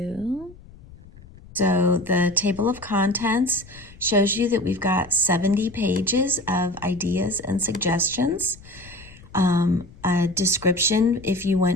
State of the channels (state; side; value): noise; left; rumble, 21 dB below the sound